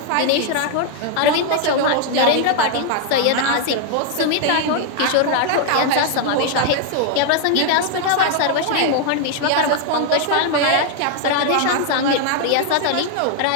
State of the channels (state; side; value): different; both; correlation 0.00